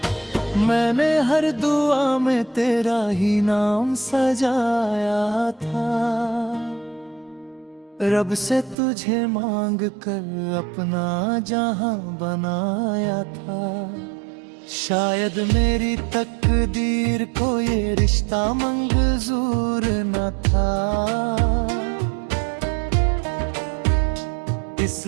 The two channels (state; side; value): drops out; left; at 8.8 s